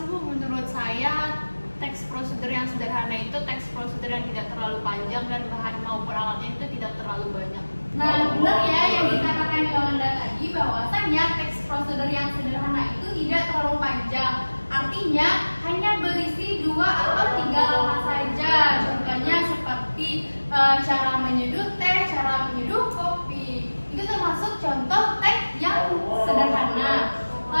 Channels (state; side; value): inverted; both; correlation -1.00